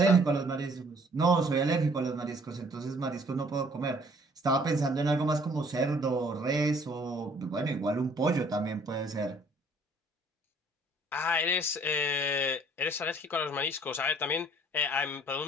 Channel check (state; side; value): normal; both; correlation 0.58